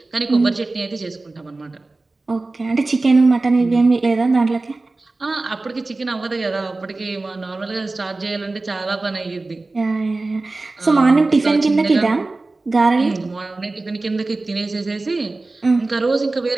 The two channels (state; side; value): quieter; left; 3.3 dB